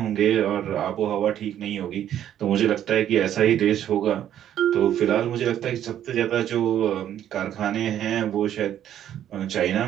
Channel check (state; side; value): quieter; left; 10.8 dB